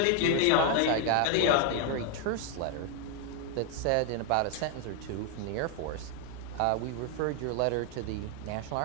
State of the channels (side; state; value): both; different; correlation 0.00